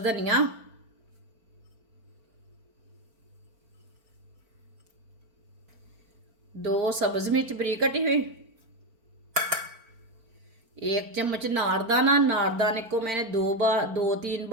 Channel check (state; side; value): late; left; 4.5 ms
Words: धनिया, 2 सब्ज मिर्च बारीक कटी हुई, 1 चम्मच नारदाना। नारदाने को मैंने 2-3